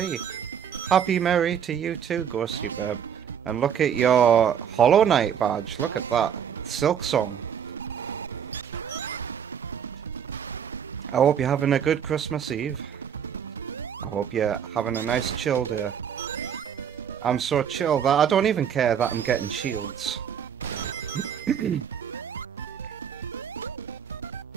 Happy Merry to you too, Ghosty Babe. And look at your Hollow Knight badge, look at that. Silk Song. I hope you're having a good Christmas Eve. I hope you're having a nice chill day. I'm so chill that I don't even care that I'm getting shields.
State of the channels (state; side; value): quieter; left; 8.3 dB